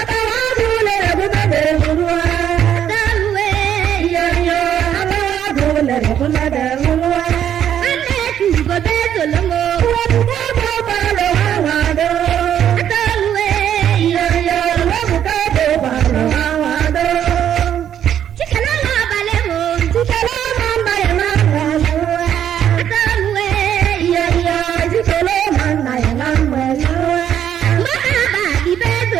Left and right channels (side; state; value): left; quieter; 9.9 dB